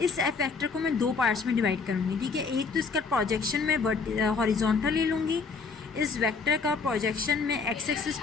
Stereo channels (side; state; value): right; quieter; 4.8 dB